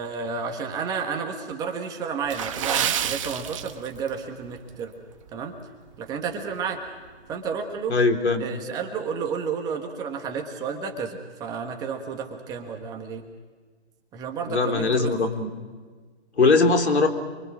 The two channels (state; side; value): normal; both; correlation 0.22